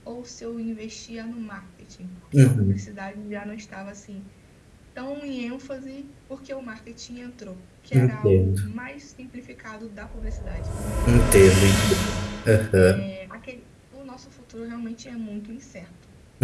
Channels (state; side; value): identical; both; correlation 1.00